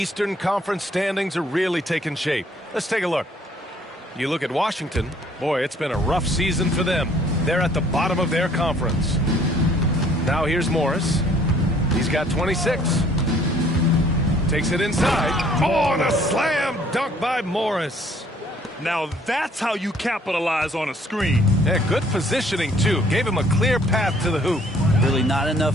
Conference standings are really taking shape. Let's take a look. You look at Washington. Boy, it's been a rough season for them. They're at the bottom of their conference. Now here's Morris. He's got 26. Takes it inside. Oh, and a slam dunk by Morris. Now that's how you capitalize on a screen. Yeah, good positioning, too. Gave him a clear path to the hoop. Really not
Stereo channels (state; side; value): normal; both; correlation 0.60